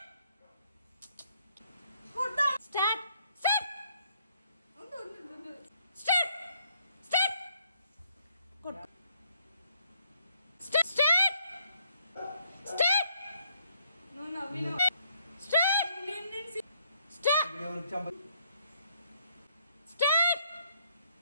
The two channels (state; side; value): inverted; both; correlation -0.70